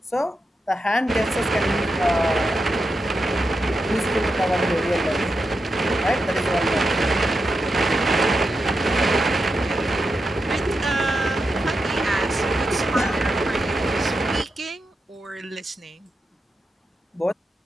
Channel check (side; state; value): both; normal; correlation 0.87